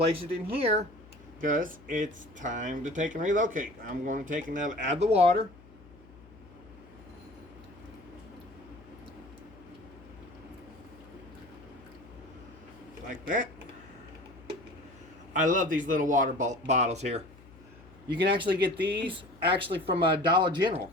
it in here because it's time to take and relocate. I'm going to take and add the water. Like that. I love these little water bottles here. You can actually get these from Dollar General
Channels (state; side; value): noise; left; hum, 22 dB below the sound